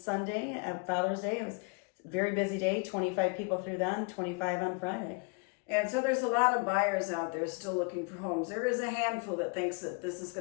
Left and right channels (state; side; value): quieter; right; 33.2 dB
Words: at Father's Day. It was a very busy day. 25 people through then, 25 on Friday. And so there's a lot of buyers out there still looking for homes. There is a handful that thinks that this is